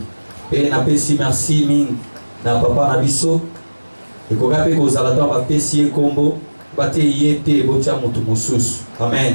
Pe na pesi merci ming na papa na biso. Et qu'on rappelle qu'aux alatons va pessier combo, bate yete botia mutu musus.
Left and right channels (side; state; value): both; inverted; correlation -1.00